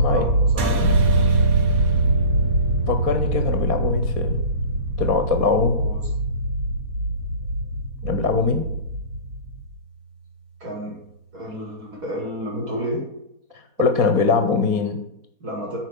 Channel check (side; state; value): left; late; 4.2 ms